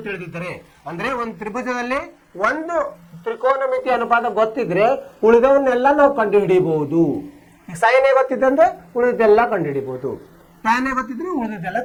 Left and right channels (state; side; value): identical; both; correlation 1.00